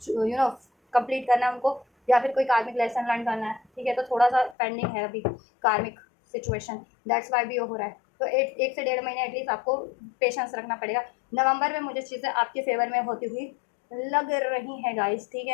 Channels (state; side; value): drops out; right; at 4.5 s